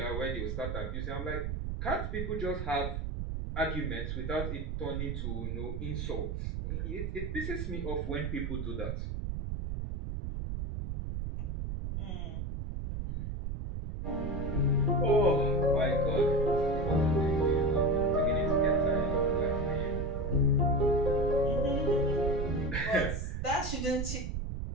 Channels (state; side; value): noise; right; rumble, 3 dB below the sound